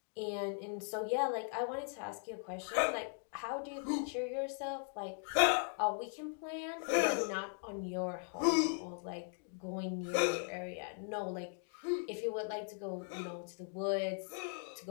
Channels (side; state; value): right; silent; 52 dB below the other